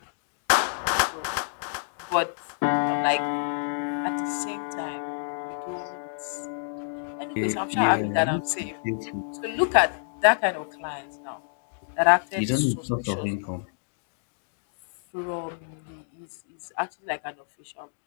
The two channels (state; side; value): silent; right; digital silence